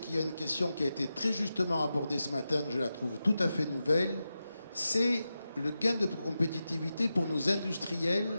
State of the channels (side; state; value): both; inverted; correlation -0.91